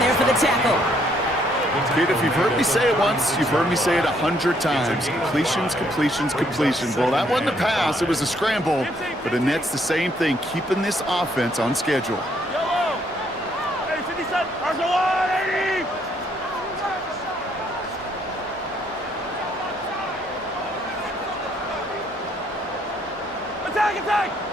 for the tackle. Kate, if you've heard me say it once, you've heard me say it 100 times. Completions. Well, that wasn't a pass, it was a scramble. But Annette's the same thing, keeping this offense on schedule. Yellow. Hey, 57. Arsenal. Attack.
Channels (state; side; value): normal; both; correlation 0.69